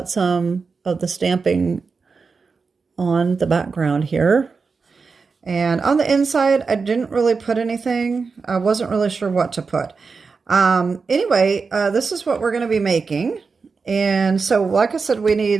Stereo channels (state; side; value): quieter; left; 4.8 dB